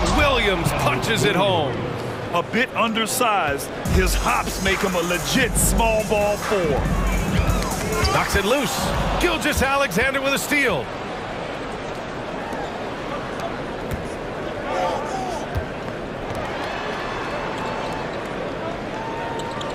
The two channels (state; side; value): identical; both; correlation 1.00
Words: Williams punches it home. A bit undersized, his hops make him a legit small ball 4. Knocks it loose. Gilgeous-Alexander with a steal.